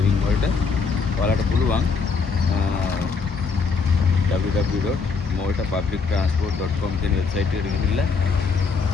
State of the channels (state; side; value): quieter; right; 4.9 dB